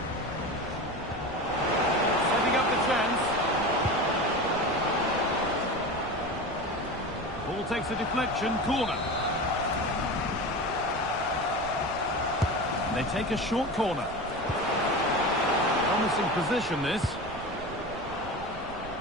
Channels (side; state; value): right; noise; rumble, 16 dB below the sound